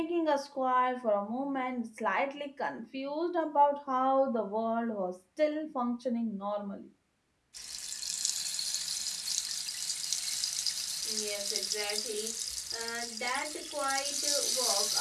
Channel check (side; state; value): both; identical; correlation 1.00